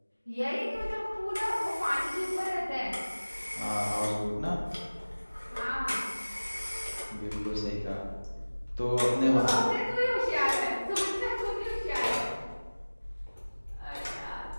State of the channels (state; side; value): inverted; both; correlation -1.00